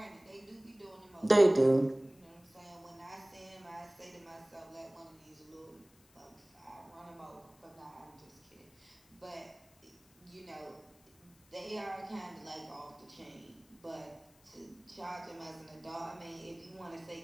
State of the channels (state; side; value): noise; left; hiss, 29 dB below the sound